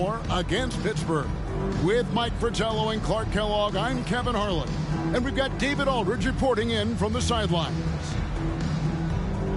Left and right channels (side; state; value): both; identical; correlation 1.00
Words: against Pittsburgh. With Mike Fratello and Clark Kellogg, I'm Kevin Harlan. And we've got David Aldridge reporting in from the sidelines.